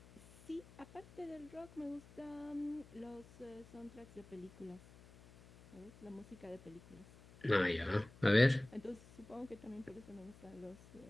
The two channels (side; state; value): left; noise; hum, 21 dB below the sound